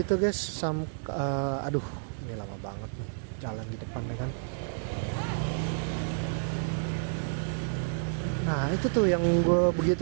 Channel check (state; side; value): silent; left; digital silence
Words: guys, aduh ini lama banget nih jalan di depan ya kan. Nah itu tuh yang gue begitu